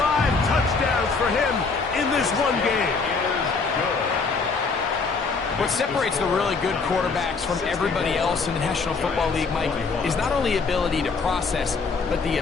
touchdowns for him in this one game. What separates the really good quarterbacks from everybody else in the National Football League, Mike, is not only ability to process, but the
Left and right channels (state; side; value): quieter; right; 4.6 dB